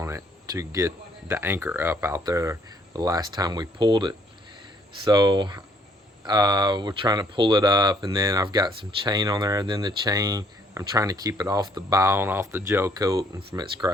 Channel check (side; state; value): both; normal; correlation 0.64